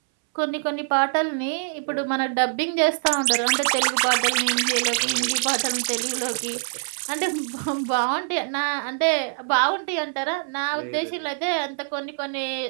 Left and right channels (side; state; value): left; silent; 62 dB below the other